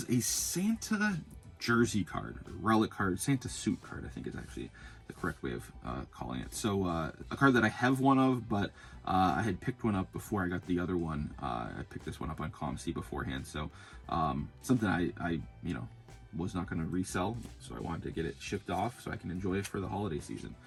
a Santa jersey card, relic card, Santa suit card, I think is actually the correct way of calling it. So a card that I have one of, but I had picked one up before I got the other one. I picked this one up on COMC beforehand. So something I was not going to resell, so I wanted to get it shipped off so I can enjoy it for the holiday season.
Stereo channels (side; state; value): both; identical; correlation 1.00